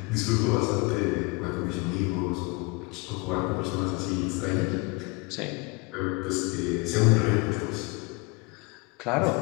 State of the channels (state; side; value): quieter; right; 27.2 dB